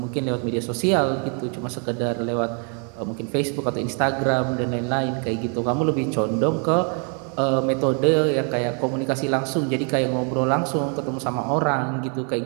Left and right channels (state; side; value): quieter; left; 39.8 dB